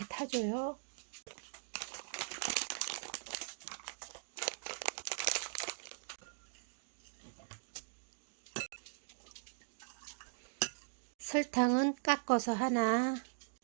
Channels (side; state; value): left; silent; digital silence